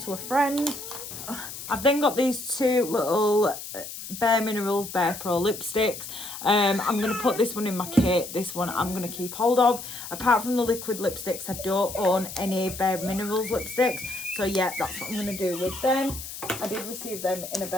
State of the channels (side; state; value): left; noise; hiss, 10 dB below the sound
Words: to a friend. I've then got these two little Bare Minerals Bare Pro lipsticks. I'm going to put this one in my kit. This one I'm going to keep hold of. Apart from the liquid lipsticks, I don't own any Bare Minerals lipsticks. So yeah, that's what I'm going to do with them. I did receive them in a